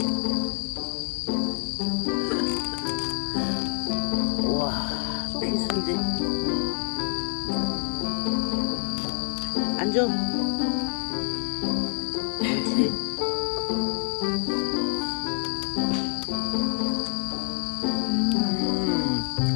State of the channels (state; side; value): silent; right; 56 dB below the other